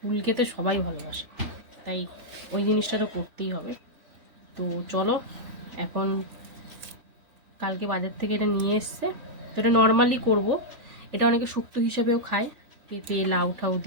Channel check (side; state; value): left; late; 3.4 ms